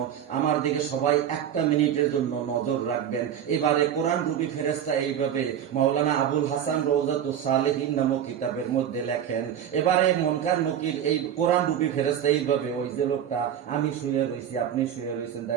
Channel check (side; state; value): left; quieter; 9.6 dB